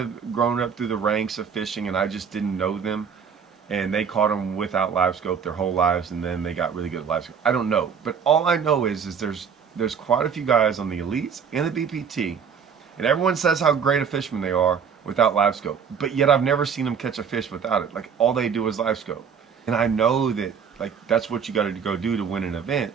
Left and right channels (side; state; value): left; quieter; 6.9 dB